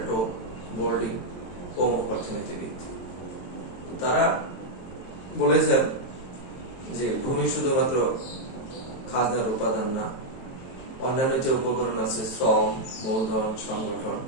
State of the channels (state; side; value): late; right; 23 ms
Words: বোর্ডিং, প্রমুখ অর্থনীতিবিদ। তারা বলেছেন যে ভূমি শুধুমাত্র খাজনার উপাদান না, অন্যান্য যে উপকরণ আছে শ্রম, মূলধন, সংগঠন